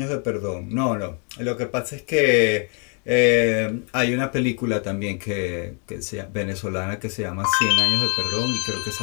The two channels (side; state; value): right; quieter; 38.3 dB